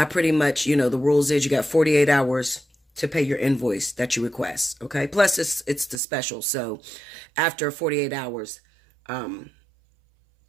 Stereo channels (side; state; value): left; drops out; at 6.0 s